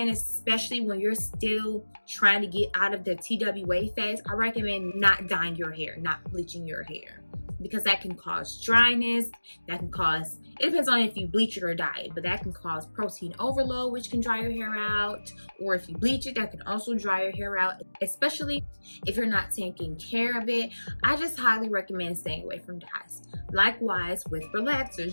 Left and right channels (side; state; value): both; inverted; correlation -1.00